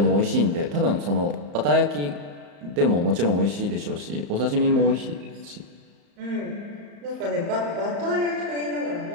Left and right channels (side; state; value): left; late; 35 ms